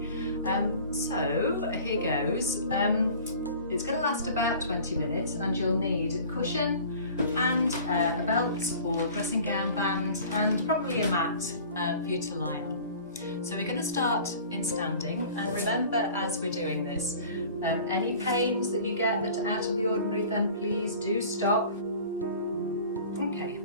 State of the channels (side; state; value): both; inverted; correlation -0.45